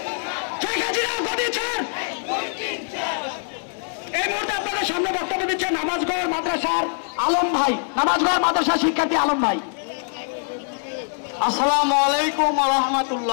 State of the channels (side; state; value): right; silent; digital silence